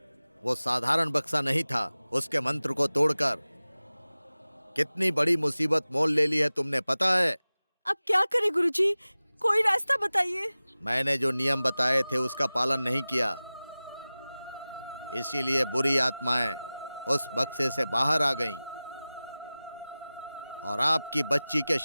वो साधारण बक्सा नहीं था। उसके मंत्र को तोड़कर कितनी बड़ी मुसीबत मोल ले ली है तुमने, पता है? अब क्या करें गुरुजी? कोई रास्ता बताइए। मैंने जो नियम बताए थे उसका पालन नहीं किया, इसीलिए बुरी आत्माएं उस बक्से से बाहर आ गईं और आपकी बच्ची के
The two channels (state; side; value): inverted; both; correlation -0.97